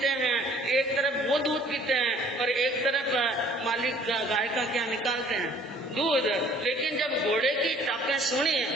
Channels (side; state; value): both; normal; correlation 0.56